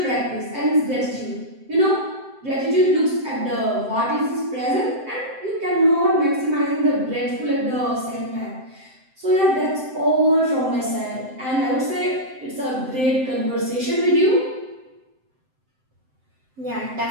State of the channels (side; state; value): left; late; 7.7 ms